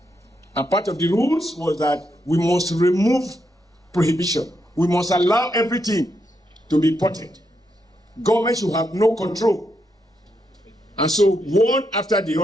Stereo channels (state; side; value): normal; both; correlation 0.81